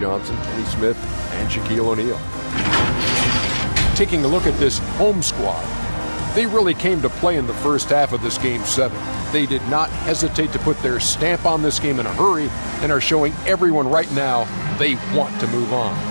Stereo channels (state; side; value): inverted; both; correlation -1.00